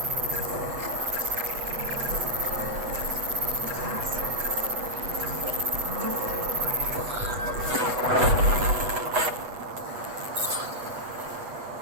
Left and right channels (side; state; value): left; late; 8.1 ms